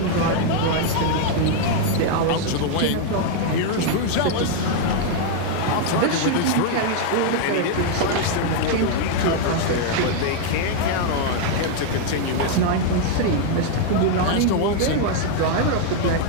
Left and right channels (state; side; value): different; both; correlation 0.00